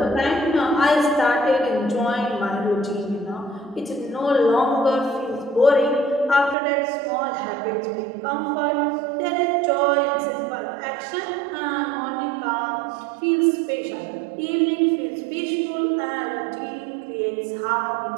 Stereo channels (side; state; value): left; drops out; at 6.6 s